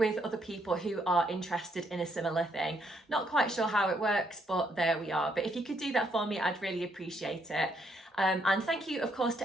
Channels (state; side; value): normal; both; correlation 0.73